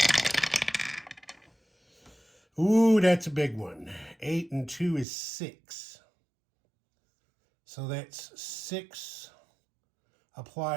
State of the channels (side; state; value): left; drops out; at 5.1 s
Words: Ooh, that's a big one. 8 and 2 is 6. So that's 6.